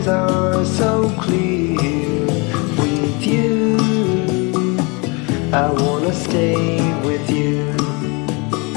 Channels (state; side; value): quieter; right; 29.7 dB